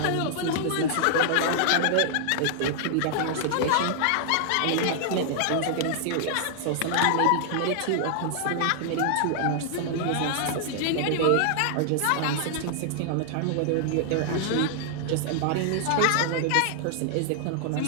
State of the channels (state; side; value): different; both; correlation -0.01